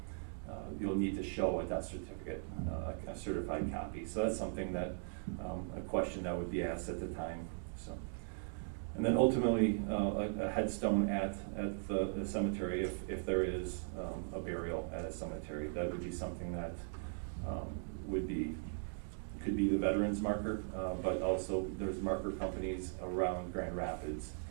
you'll need to show a death certificate, a certified copy. So that's something that a question that would be asked at the time. So. And then ultimately, a headstone at the cemetery, if there is a burial at a cemetery, that would be something that could be the veterans marker, but also there's marker companies around Grand Rapids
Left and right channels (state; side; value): silent; left; digital silence